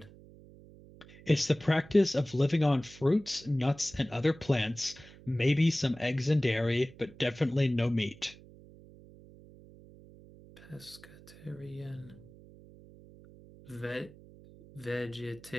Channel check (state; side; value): noise; right; hum, 21 dB below the sound